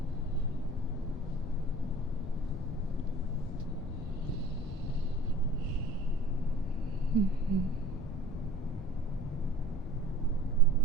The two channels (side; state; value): both; normal; correlation 0.45